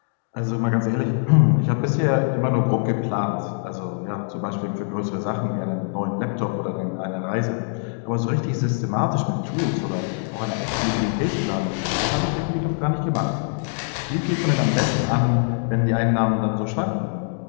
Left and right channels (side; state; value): right; silent; 63 dB below the other